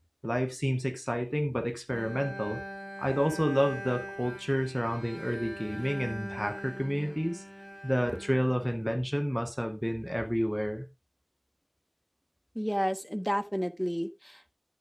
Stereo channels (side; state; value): both; identical; correlation 1.00